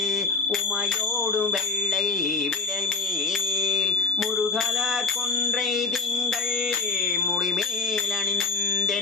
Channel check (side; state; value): right; quieter; 4.4 dB